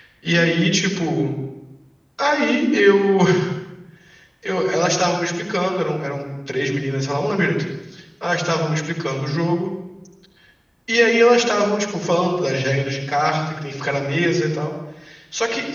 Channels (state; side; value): identical; both; correlation 1.00